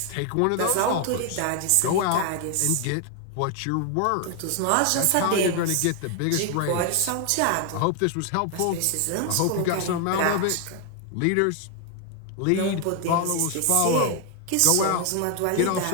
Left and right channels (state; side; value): different; both; correlation 0.01